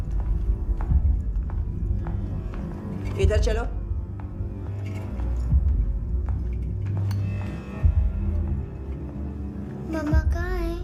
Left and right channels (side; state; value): both; identical; correlation 1.00